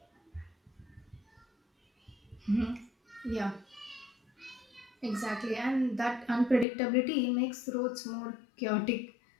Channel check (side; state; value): right; drops out; at 6.7 s